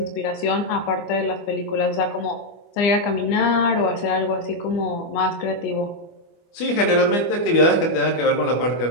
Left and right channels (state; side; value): late; right; 24 ms